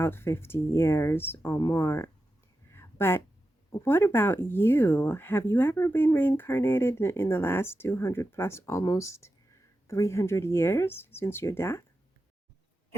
50 years or more. But what about you? Have you ever been reincarnated in the last 200 plus, almost 300 years since your death?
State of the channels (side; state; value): both; normal; correlation 0.91